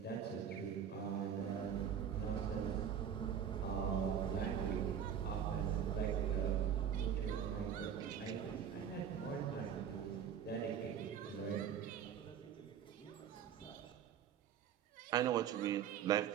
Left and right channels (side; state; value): left; quieter; 8.5 dB